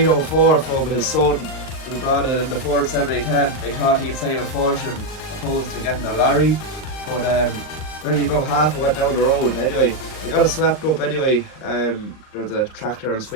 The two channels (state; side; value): late; right; 38 ms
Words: from his son who brought it in the Ford 7010. They thought he'd save a fortune opposed to getting a lorry, but only about half went down the road. Anyway, they got it swept up anyway. There's a tractor and